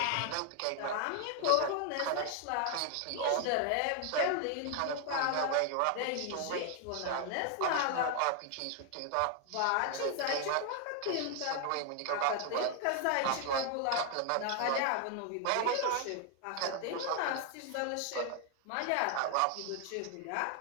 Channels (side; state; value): both; different; correlation 0.00